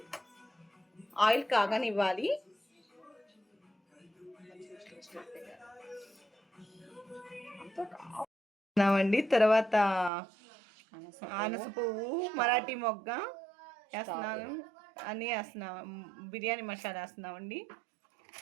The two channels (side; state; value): left; drops out; at 10.1 s